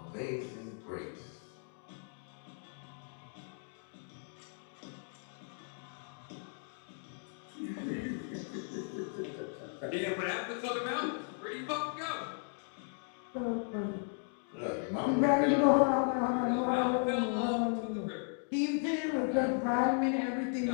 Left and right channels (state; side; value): silent; right; 54 dB below the other